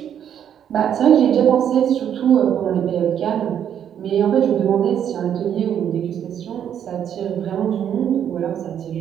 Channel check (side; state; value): left; quieter; 9.2 dB